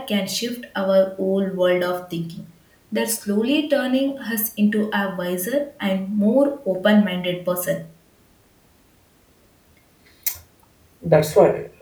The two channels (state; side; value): identical; both; correlation 1.00